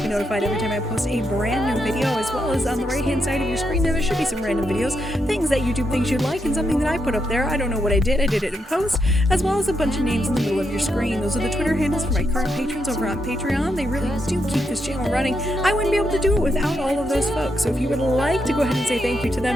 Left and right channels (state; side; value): normal; both; correlation 0.81